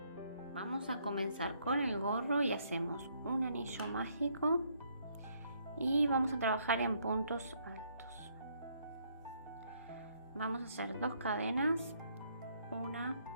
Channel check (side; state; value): both; inverted; correlation -0.70